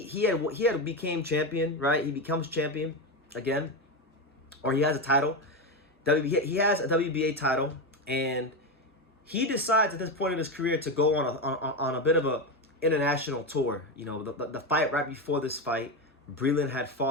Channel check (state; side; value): normal; both; correlation 0.15